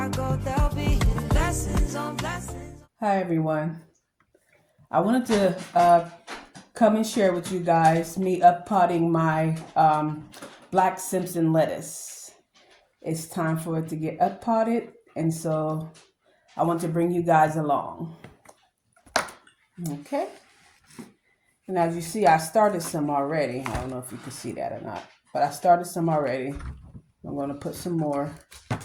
go, there'll be blessings on blessings. Hi everyone. I wanted to come and share with you guys me uppotting my Black Simpson lettuce. It's time for it to get uppotted, and so I want to bring you guys along. Okay. And as you see, I started some already. I don't know if you can see that or not, but I started some already. I'm going to put some more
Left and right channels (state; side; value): identical; both; correlation 1.00